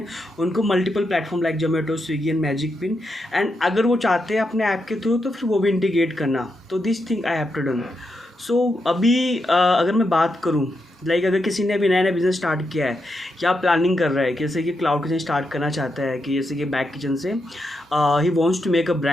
उनको multiple platform like Zomato, Swiggy and magic pin, and अगर वो चाहते हैं अपने ऐप के थ्रू तो फिर वो भी इंटीग्रेट करना। तो this thing I have to done. अभी अगर मैं बात करूँ, अगर किसी ने अभी नया नया बिज़नेस स्टार्ट किया है या प्लानिंग कर रहा है, जैसे कि क्लाउड किचन स्टार्ट करना चाहता है, कि जैसे कि बैक किचन से ही wants to make a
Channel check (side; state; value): both; normal; correlation 0.84